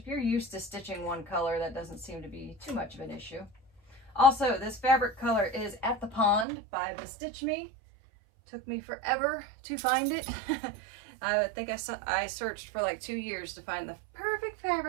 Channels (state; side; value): drops out; left; at 6.5 s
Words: you're used to stitching one color, that doesn't seem to be too much of an issue. Also, this fabric color is At the Pond by BeStitchme. Took me forever to find it. I think I searched for like 2 years to find the perfect